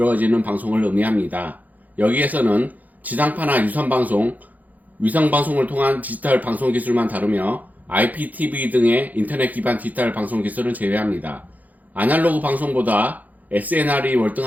방송을 의미합니다. 여기에서는 지상파나 유선방송, 위성방송을 통한 디지털 방송 기술만 다루며 IPTV 등의 인터넷 기반 디지털 방송 기술은 제외합니다. 아날로그 방송보다 SNR이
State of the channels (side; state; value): left; late; 0.080 ms